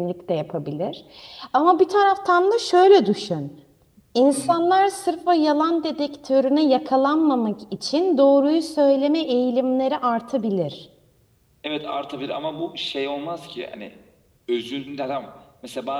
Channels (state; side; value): identical; both; correlation 1.00